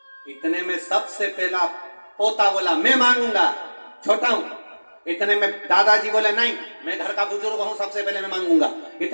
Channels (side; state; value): both; inverted; correlation -1.00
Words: इतने में सबसे पहला पोता बोला, मैं मांगूंगा, छोटा हूं। इतने में दादाजी बोले, नहीं मैं घर का बुजुर्ग हूं, सबसे पहले मैं मांगूंगा।